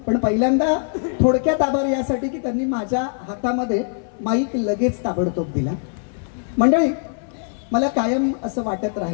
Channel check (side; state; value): right; silent; 59 dB below the other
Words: पण पहिल्यांदा थोडक्यात आभार यासाठी की त्यांनी माझ्या हातामध्ये माईक लगेच ताबडतोब दिला. मंडळी, मला कायम असं वाटत